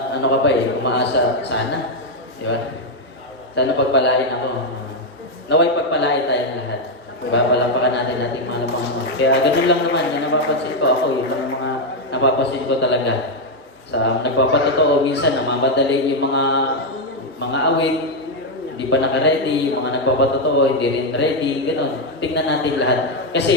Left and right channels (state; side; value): normal; both; correlation 0.03